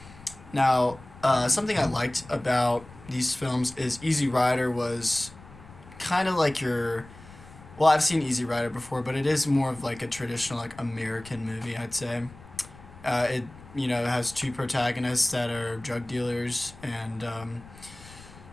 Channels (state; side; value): noise; left; rumble, 20 dB below the sound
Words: Now, something I liked about these films is Easy Rider was kind of like your. Well, I've seen Easy Rider before, but it is more of like a traditional, like American movie, I'd say. It has two protagonists that are drug dealers and